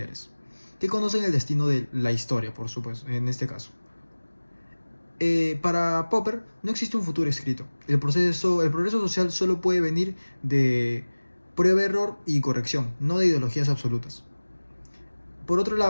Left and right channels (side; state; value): both; inverted; correlation -1.00